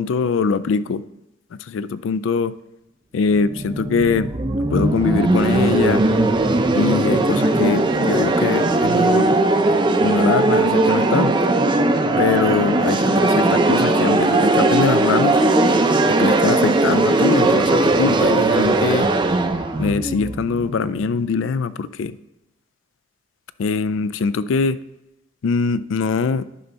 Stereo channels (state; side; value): normal; both; correlation 0.46